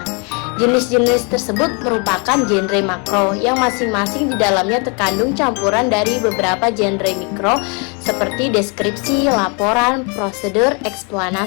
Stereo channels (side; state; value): right; quieter; 34.1 dB